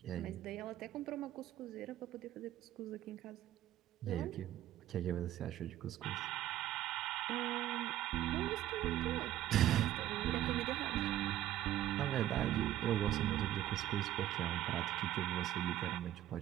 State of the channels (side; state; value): left; quieter; 13.1 dB